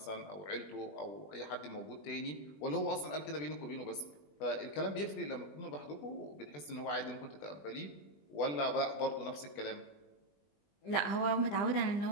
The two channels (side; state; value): right; late; 20 ms